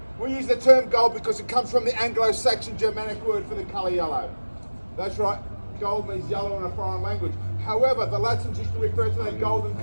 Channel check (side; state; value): both; inverted; correlation -1.00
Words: We use the term gold because it comes from the Anglo-Saxon Germanic word for the colour yellow. That's right, gold means yellow in a foreign language. However, the Latins used to refer to that golden